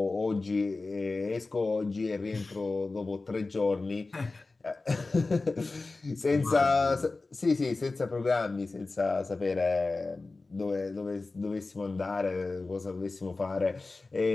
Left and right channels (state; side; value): quieter; right; 3.5 dB